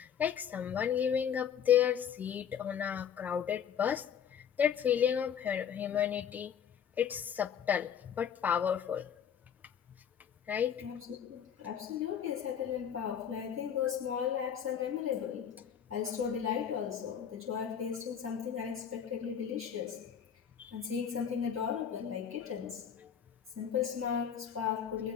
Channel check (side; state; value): right; quieter; 8.3 dB